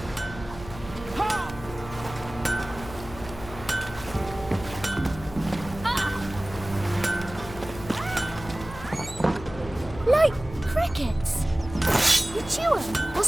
Like crickets. You chew them or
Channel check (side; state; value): left; noise; hum, 14 dB below the sound